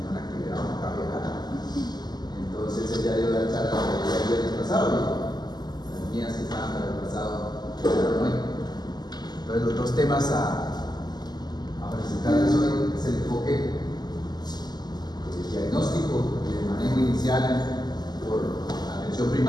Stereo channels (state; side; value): late; right; 0.20 ms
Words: una actividad, una caminata. Entonces, ella dio la charla el viernes pasado y las mías que estaban para el pasado quedaron hoy. Entonces, los dos temas a presentarles hoy es el enfoque diagnóstico y de manejo inicial por atención